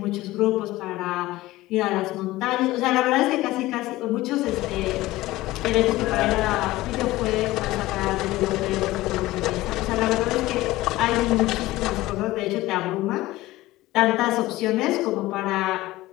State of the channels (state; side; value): quieter; right; 17.8 dB